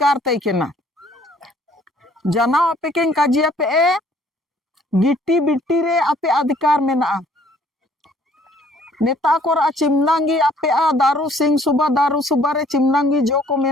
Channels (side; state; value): both; normal; correlation 0.59